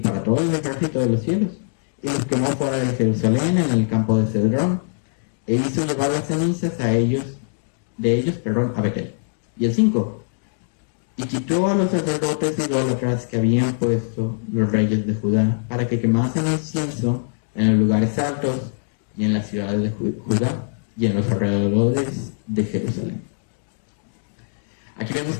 todo el ejército de los cielos, y los quemó fuera de Jerusalén en el campo de Cedrón, e hizo llevar las cenizas de ellos a Betel. Y el 5. Y quitó a los sacerdotes idólatras que habían puesto los reyes de Judá, para que quemasen incienso en los lugares altos y en las ciudades de Judá y en los alrededores de Jerusalén. Aquí vemos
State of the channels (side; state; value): right; silent; digital silence